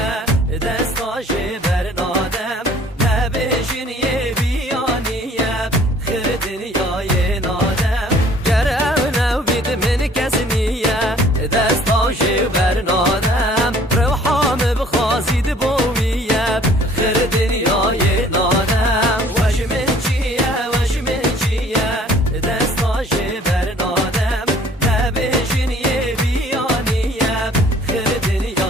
دستاش برنادم نبیشن یه بیانیه خیر دنیای نادم گرم نو بید من کس نیه دستاش برنادم روحام بخوازید بویه خیر دنیای نادم وجمن چیه دستاش برنادم نبیشن یه بیانیه خیر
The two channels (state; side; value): normal; both; correlation 0.55